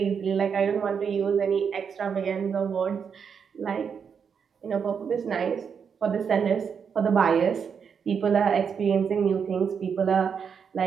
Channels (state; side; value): quieter; left; 6.7 dB